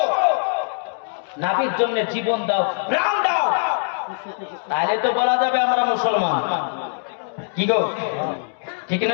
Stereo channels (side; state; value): right; silent; digital silence